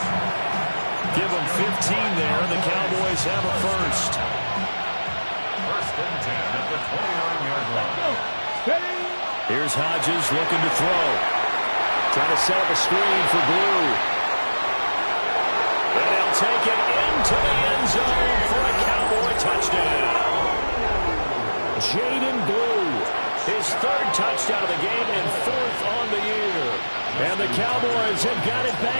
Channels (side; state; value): both; inverted; correlation -1.00